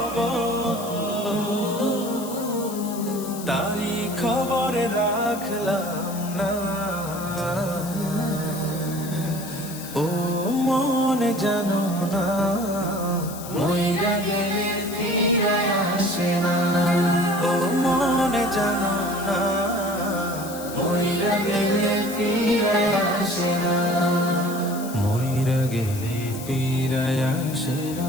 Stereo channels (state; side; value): noise; left; hiss, 13 dB below the sound